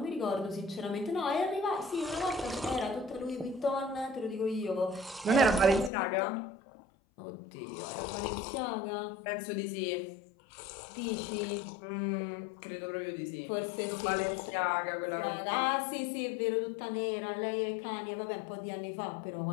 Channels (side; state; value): right; drops out; at 5.9 s